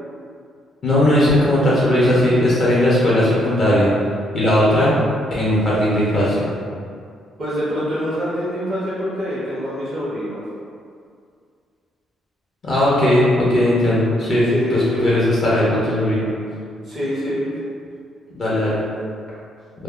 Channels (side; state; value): both; normal; correlation 0.72